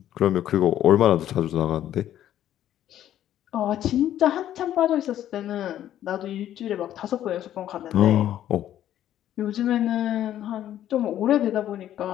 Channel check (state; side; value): quieter; right; 11.7 dB